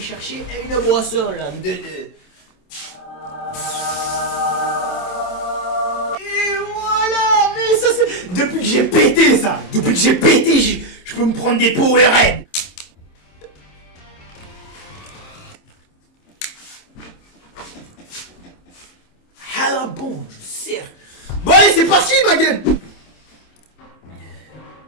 une boisson là, en 2-2. Et voilà, mais ça c'est... Depuis que j'ai pété ça, je peux me prendre des Powerade. Ah là bon, je sers. Bon allez, c'est parti ma gueule.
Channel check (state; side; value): late; right; 27 ms